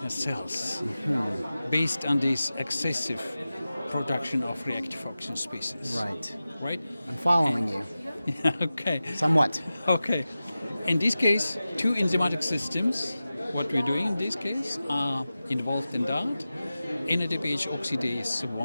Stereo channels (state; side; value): inverted; both; correlation -0.95